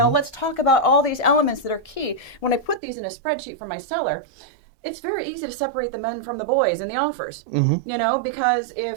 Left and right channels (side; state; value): left; drops out; at 2.8 s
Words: let's talk about all these elements that are key. When I put these in a spreadsheet for my seller, it's very easy to separate the men from the boys in the offers, you know, because